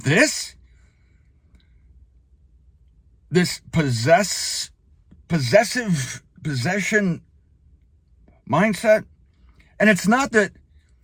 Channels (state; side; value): identical; both; correlation 1.00